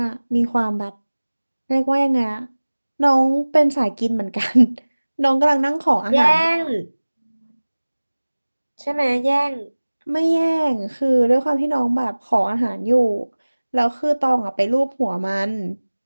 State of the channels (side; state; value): both; inverted; correlation -1.00